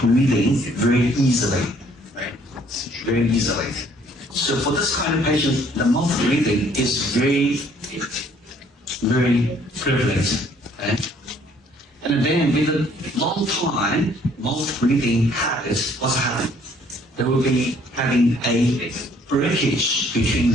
very easily, right? Very easily. So for this kind of patient, the mouth breathing is very prevalent. Okay? And then with a long time mouth breathing habit, what's happening? There will be having a breakage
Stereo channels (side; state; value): both; normal; correlation 0.61